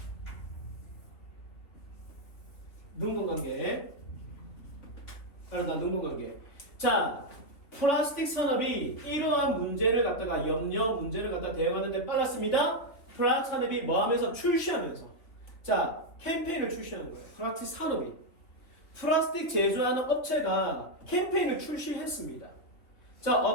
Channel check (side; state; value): right; late; 3.3 ms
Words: 능동관계. 능동관계. 자, 플라스틱 산업이 이러한 문제를 갖다가 문제를 갖다 대응하는데 빨랐습니다. 플라스틱 산업이 뭐 하면서 출시하면서. 자, 캠페인을 출시하는 거예요. 플라스틱 산업이. 플라스틱 제조하는 업체가 캠페인을 출시했습니다. 자,